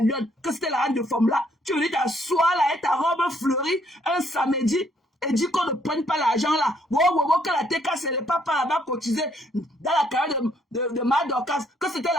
Lyon, que c'était la reine de femme là, tu venais t'asseoir là avec ta robe fleurie un samedi. Et dit qu'on ne prenne pas l'argent là. Que la TKC n'est pas là-bas cotisé dans la carrière de Madorcas, que c'était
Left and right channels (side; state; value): both; normal; correlation 0.68